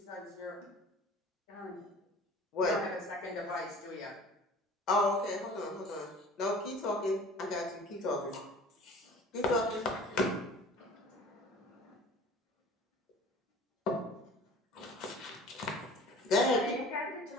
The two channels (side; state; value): both; normal; correlation 0.45